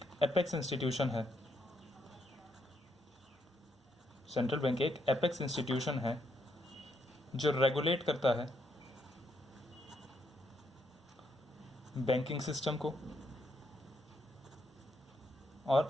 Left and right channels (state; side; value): normal; both; correlation 0.77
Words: एपेक्स इंस्टीट्यूशन है। सेंट्रल बैंक एक एपेक्स इंस्टीट्यूशन है जो रेगुलेट करता है बैंकिंग सिस्टम को